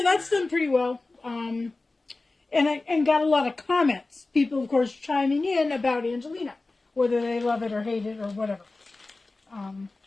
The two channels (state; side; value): quieter; right; 3.3 dB